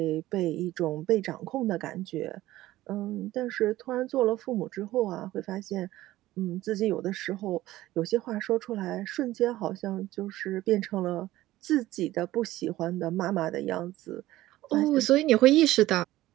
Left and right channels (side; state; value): left; quieter; 16.0 dB